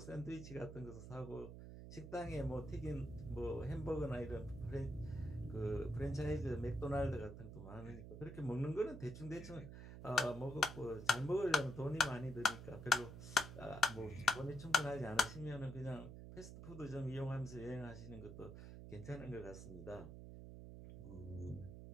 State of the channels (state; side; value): noise; right; hum, 11 dB below the sound